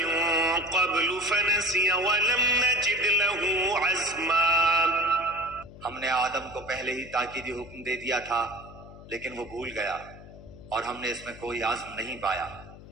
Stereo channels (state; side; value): noise; left; hum, 18 dB below the sound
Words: قَبْلُ فَنَسِيَ وَلَمْ نَجِدْ لَهُ عَزْمًا. ہم نے آدم کو پہلے ہی تاکیدی حکم دے دیا تھا لیکن وہ بھول گیا اور ہم نے اس میں کوئی عزم نہیں پایا۔